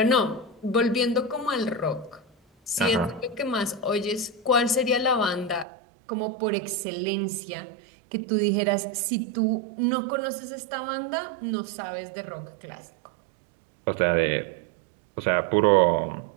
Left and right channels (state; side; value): drops out; left; at 5.7 s